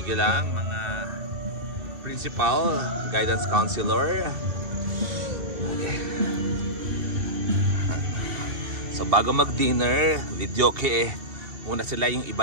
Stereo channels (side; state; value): left; late; 2.3 ms